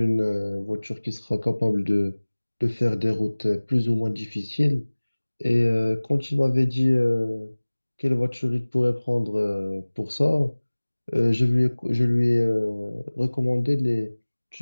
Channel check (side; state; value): both; inverted; correlation -1.00